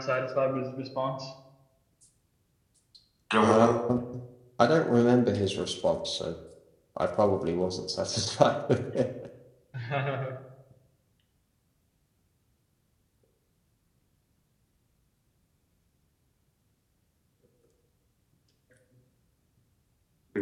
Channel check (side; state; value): both; identical; correlation 1.00